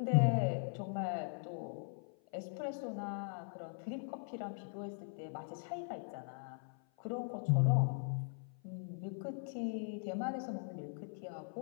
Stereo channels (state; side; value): silent; right; 51 dB below the other